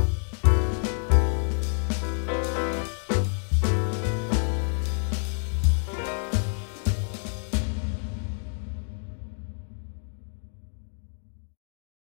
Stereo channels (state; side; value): silent; right; 59 dB below the other